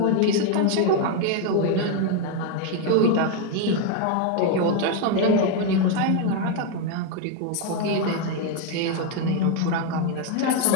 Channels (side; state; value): both; different; correlation 0.02